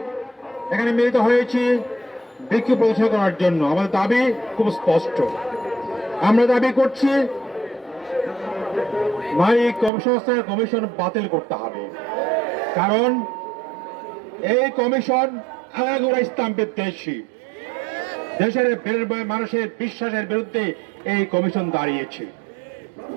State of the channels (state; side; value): drops out; left; at 9.9 s